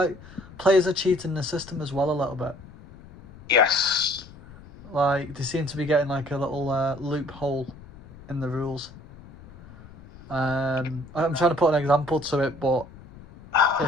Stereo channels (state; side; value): noise; left; rumble, 19 dB below the sound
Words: players are cheating the system as well a little bit. Yes. Like they seem to be getting like a little loophole in the rules. I'm trying to put an example to it, but